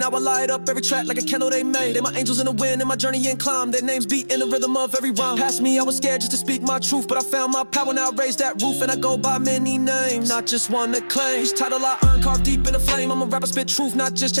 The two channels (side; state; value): both; inverted; correlation -1.00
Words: I light up every track like a candle they made. They my angels in the wind, in my journey and climb. Their names beat in the rhythm of every rhyme. Past me, I was scared just to speak my truth, but I found my power, now I raise that roof. And I go by many names, not just one that claims. Each title I earn, carved deep in the flame. I'm a rapper, spit truth, not just